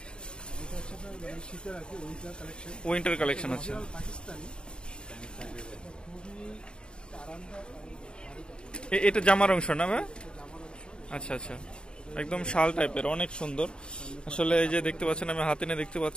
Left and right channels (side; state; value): right; late; 0.051 ms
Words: উইন্টার কালেকশন আছে। এটা জামার অংশ না ভাই? আচ্ছা আচ্ছা, একদম শাল টাইপের, অনেক সুন্দর। আসলে এই যে দেখতে পাচ্ছেন, আমি হাতে নিয়ে দেখতে